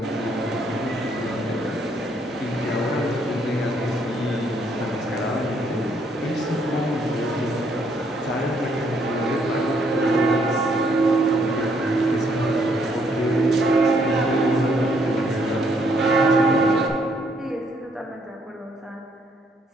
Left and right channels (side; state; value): both; normal; correlation 0.69